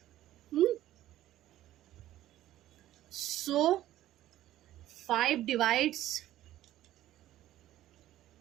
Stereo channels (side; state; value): left; quieter; 13.8 dB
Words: सो 5 divides